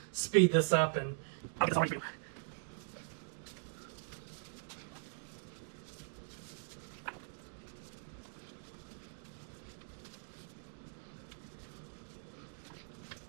speed this up and I'll get this all ready for you.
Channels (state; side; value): silent; left; digital silence